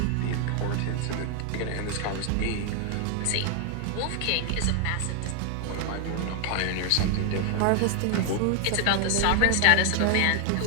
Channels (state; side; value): different; both; correlation 0.00